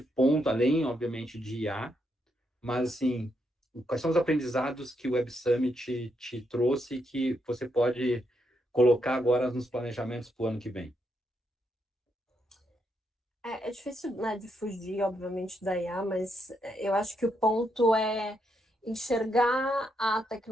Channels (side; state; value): both; normal; correlation 0.79